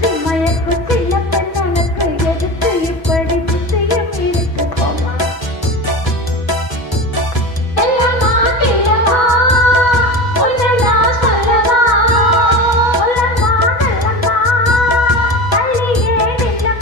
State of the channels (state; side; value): late; right; 6.1 ms